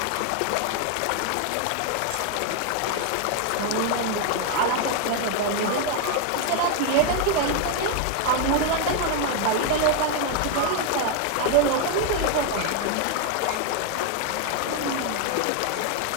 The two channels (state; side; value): different; both; correlation 0.01